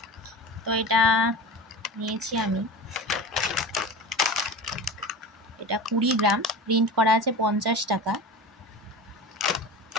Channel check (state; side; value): normal; both; correlation 0.31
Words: তো এটা নিয়েছি আমি, এটা 20 গ্রাম, প্রিন্ট করা আছে 50 টাকা।